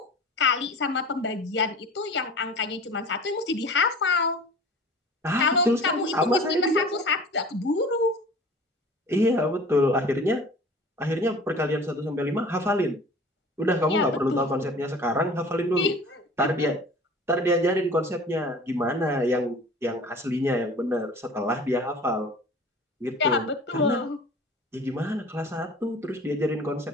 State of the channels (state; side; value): normal; both; correlation 0.43